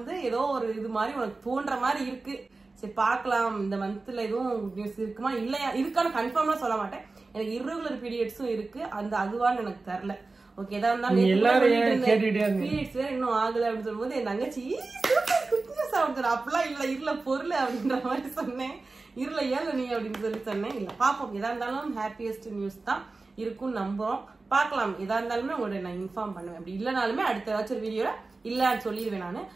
ஏதோ ஒரு இது மாதிரி உனக்கு தோன்ற மாதிரி இருக்கு. சரி பாக்கலாம், இந்த மந்த்ல எதுவும் குட் நியூஸ் இருக்குமா இல்லையா இருக்கான்னு கன்ஃபார்மா சொல்ல மாட்டேன். எனக்கு இர்ரெகுலர் பீரியட்ஸும் இருக்கு, அந்த அதுவான்னு எனக்கு தெரியல. ஓகே, ஏதா இருந்தாலும் பீரியட்ஸ் வேற இன்னும் ஆகல அப்படின்னு சொல்லும்போது என் தங்கச்சி அப்படிலாம் இல்ல இருல பொருள் அப்படின்ற மாதிரி சொன்னேன். இருல ஏல நீ அப்படின்னு சொல்லி சொன்னேன். இல்ல பாப்போம், எதா இருந்தாலும் ஹாப்பியஸ்ட் நியூஸ் தான் இருக்கும்னு நம்புறோம். பாக்கலாம், எதா இருந்தாலுமே உங்களோட நான் இன்ஃபார்ம் பண்ணுவேன். அப்படி இல்லனாலுமே அடுத்த ஏதாச்சும் வீடியோல இல்லன்னு சொல்லிடுவேன். நானு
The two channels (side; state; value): left; quieter; 3.6 dB